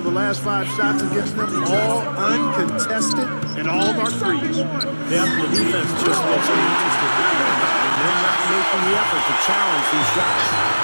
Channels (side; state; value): both; inverted; correlation -1.00